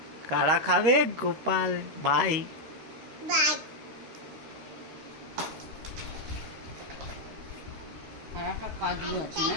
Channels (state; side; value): late; left; 13 ms